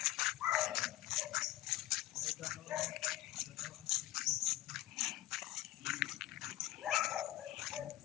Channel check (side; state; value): right; quieter; 15.8 dB